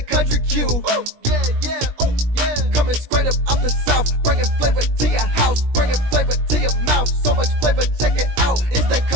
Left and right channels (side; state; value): left; late; 17 ms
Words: Country Q. Yeah, yeah, ooh, yeah. Coming straight up out the south, bringing flavor to your house, bringing flavor to your mouth. So much flavor, check it out. It's that